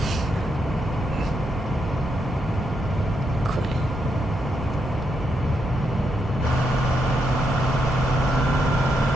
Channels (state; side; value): normal; both; correlation 0.80